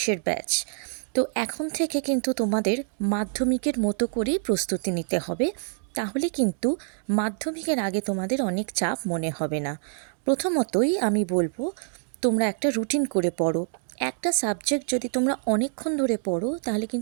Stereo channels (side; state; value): left; silent; digital silence